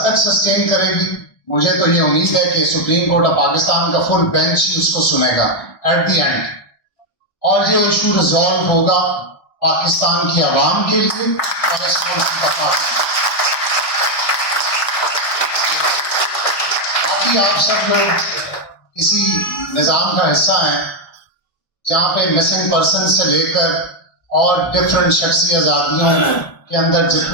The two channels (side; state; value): right; late; 1.2 ms